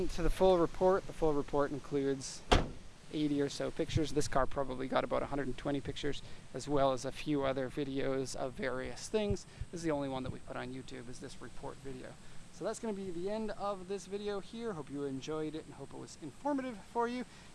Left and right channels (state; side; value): identical; both; correlation 1.00